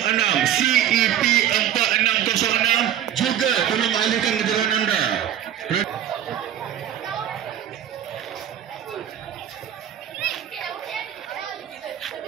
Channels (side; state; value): left; quieter; 10.5 dB